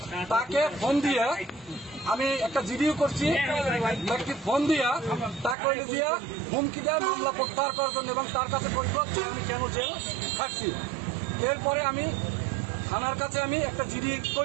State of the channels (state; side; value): drops out; left; at 5.6 s